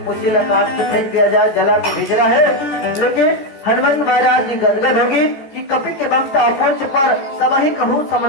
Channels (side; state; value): right; late; 13 ms